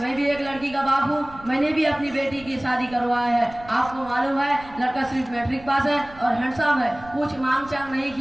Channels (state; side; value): noise; right; rumble, 20 dB below the sound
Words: भी एक लड़की का बाप हूँ, मैंने भी अपनी बेटी की शादी करवाया है। आपको मालूम है लड़का सिर्फ मैट्रिक पास है और हैंडसम है, कुछ मांग चांग नहीं